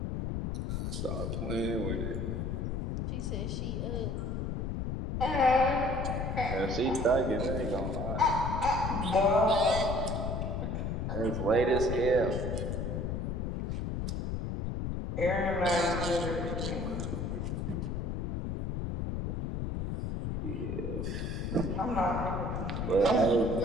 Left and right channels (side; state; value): left; noise; rumble, 2 dB below the sound